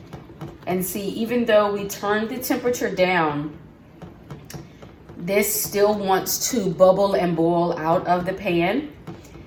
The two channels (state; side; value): identical; both; correlation 1.00